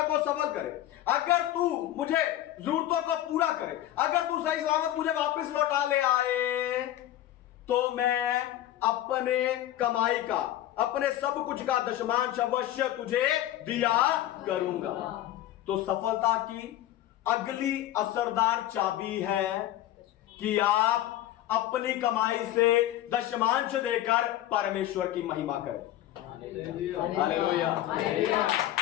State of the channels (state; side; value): quieter; right; 13.6 dB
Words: को सफल करे, अगर तू मुझे जरूरतों को पूरा करे, अगर तू सही सलामत मुझे वापस लौटा ले आए, तो मैं अपने कमाई का, अपने सब कुछ का दशमांश अवश्य तुझे दिया करूंगा। तो सफलता की अगली असरदार चाबी है कि आप अपनी कमाई से दशमांश देकर परमेश्वर की महिमा करें। हालेलुया।